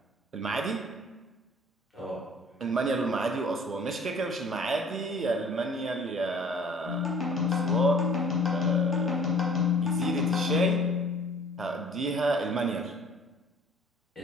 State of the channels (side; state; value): both; normal; correlation 0.52